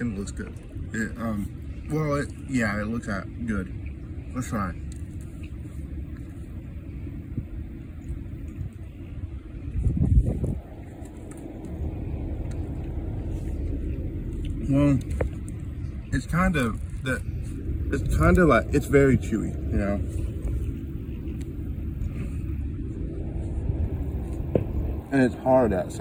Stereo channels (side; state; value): both; identical; correlation 1.00